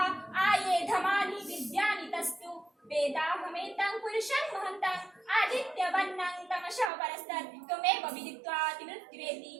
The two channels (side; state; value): left; drops out; at 6.9 s